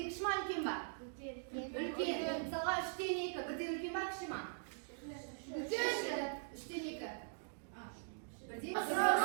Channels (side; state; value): left; silent; digital silence